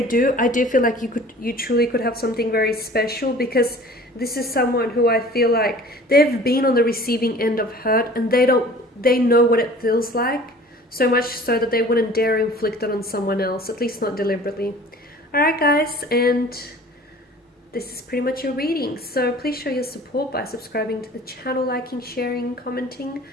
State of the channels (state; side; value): normal; both; correlation 0.46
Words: do, I do feel like you truly could have something very special, because this is someone who I feel like they've been on the receiving end of hurt, and they know what it feels like, so much so that they wouldn't dare inflict it on someone else, at least not deliberately. Alright guys, and this is pretty much your reading. So please show your support by subscribing to the channel, liking, sharing, commenting.